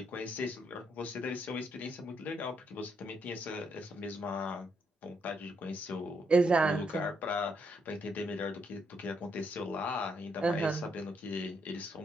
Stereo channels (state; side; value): normal; both; correlation 0.76